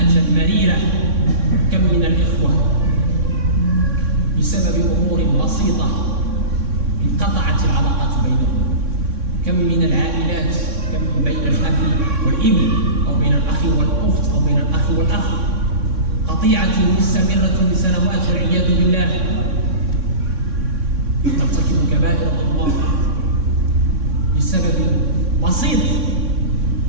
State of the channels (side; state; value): left; late; 3.6 ms